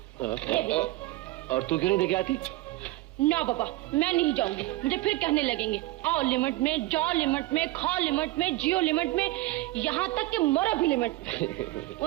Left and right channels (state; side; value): quieter; left; 18.1 dB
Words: ले। और तू क्यों नहीं देके आती? ना बाबा, मैं नहीं जाऊंगी। मुझे फिर कहने लगेंगे आओ लिमिट में, जाओ लिमिट में, खाओ लिमिट में, जियो लिमिट में, यहाँ तक कि मरो भी लिमिट में।